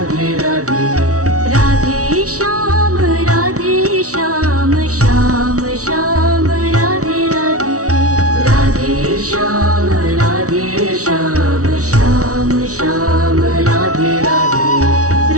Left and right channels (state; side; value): late; left; 0.66 ms